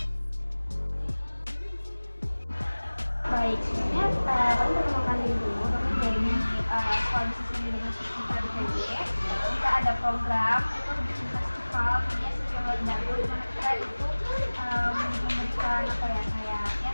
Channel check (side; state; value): both; inverted; correlation -1.00